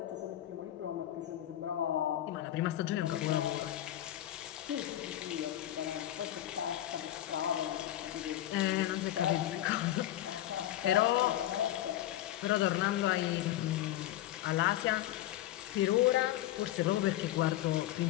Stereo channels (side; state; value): right; quieter; 13.5 dB